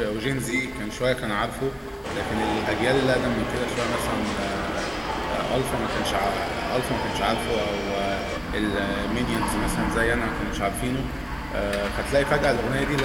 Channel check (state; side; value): identical; both; correlation 1.00